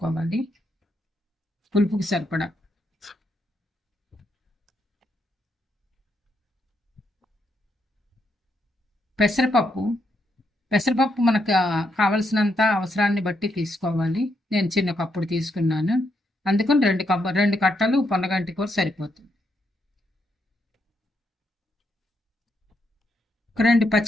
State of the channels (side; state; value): both; normal; correlation 0.79